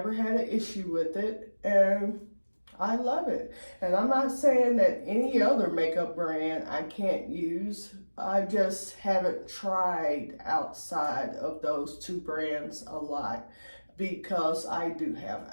had an issue with it. And I love it. And I'm not saying that any other makeup brand I can't use. I just haven't tried outside of those two brands a lot because I do have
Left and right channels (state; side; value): inverted; both; correlation -1.00